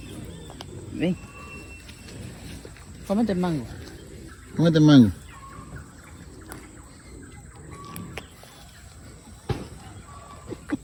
Ven. Cómete el mango. Cómete el mango.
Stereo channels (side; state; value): both; identical; correlation 1.00